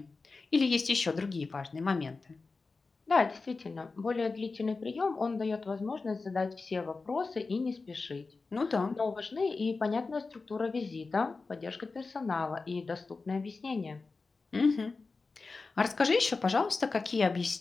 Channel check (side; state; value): right; quieter; 4.0 dB